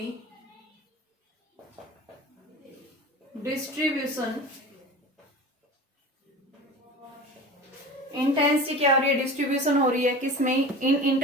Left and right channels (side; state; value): both; normal; correlation 0.34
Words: distribution, intensity क्या हो रही है, डिस्ट्रीब्यूशन हो रही है किसमें, इन